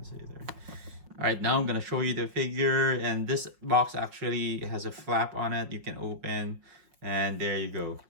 see there. All right, now I'm gonna show you the figure, and this box actually has a flap on it you can open, and there you go,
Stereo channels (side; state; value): left; late; 5.5 ms